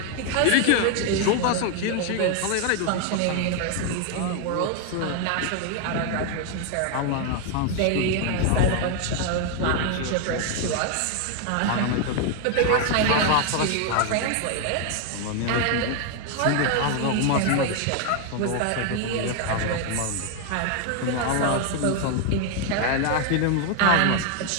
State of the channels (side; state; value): both; different; correlation 0.01